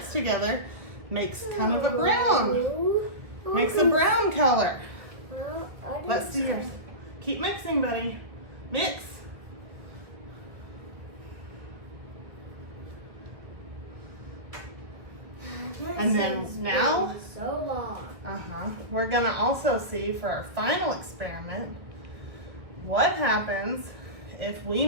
together makes kind of a brown. Makes a brown color. Let's see yours. Keep mixing, buddy. Mix. And then now, we're gonna also see for our final experiment what happens if we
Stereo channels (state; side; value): late; left; 1.5 ms